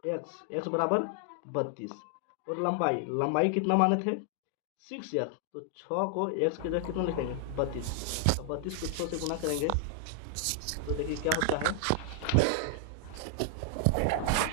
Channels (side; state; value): both; different; correlation 0.00